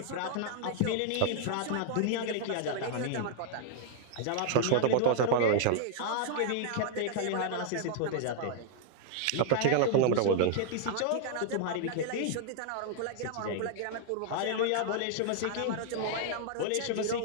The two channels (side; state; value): both; different; correlation 0.00